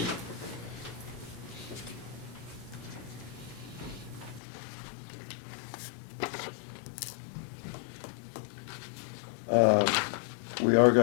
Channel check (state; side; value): drops out; right; at 4.4 s